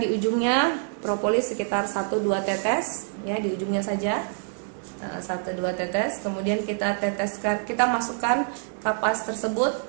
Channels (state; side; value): silent; left; 61 dB below the other